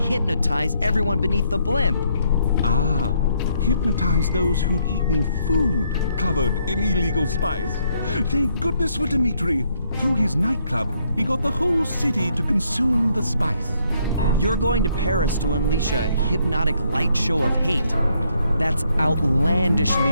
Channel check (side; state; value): both; inverted; correlation -0.72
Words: everyone beneath the blimp. Ah, hypnotize those who'd eaten food covered in illegal spice. Thank goodness for Dimitri. Through his nightclub, he got the whole city to consume the spice. You're going to Paris to unleash a hypnotic light show of hate. That's outlandishly